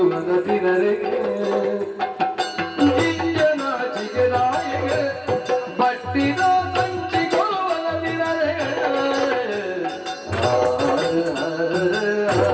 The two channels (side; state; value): both; identical; correlation 1.00